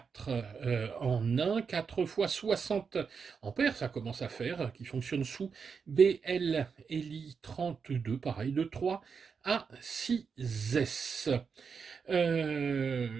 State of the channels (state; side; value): quieter; left; 5.8 dB